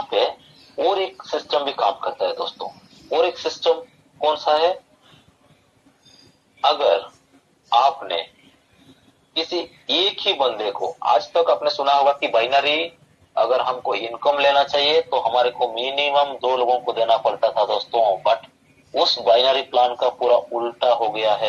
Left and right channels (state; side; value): identical; both; correlation 1.00